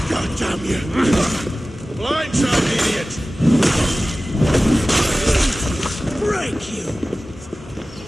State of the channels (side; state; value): both; normal; correlation 0.96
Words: God damn you! Blindside, idiot! Break you!